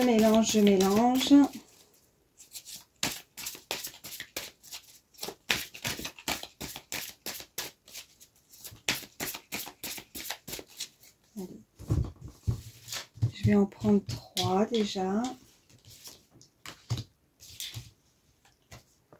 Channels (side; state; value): both; identical; correlation 1.00